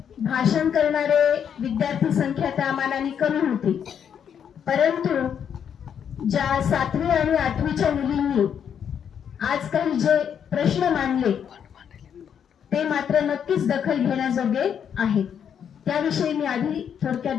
भाषण करणारे विद्यार्थी संख्या त्या मानाने कमी होती, परंतु ज्या 7वी आणि 8वीच्या मुलींनी आज काही जे प्रश्न मांडले ते मात्र नक्कीच दखल घेण्याजोगे आहेत। त्याविषयी मी आधी थोडक्यात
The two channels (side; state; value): right; quieter; 8.2 dB